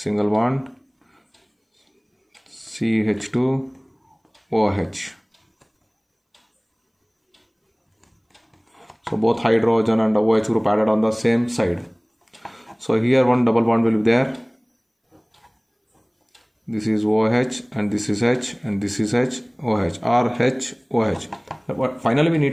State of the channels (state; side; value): identical; both; correlation 1.00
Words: bond, CH2 OH. So both hydrogen and OH group added on the same side. So here one double bond will be there. This is OH and this is H and this is H, OH, or H, OH. But finally we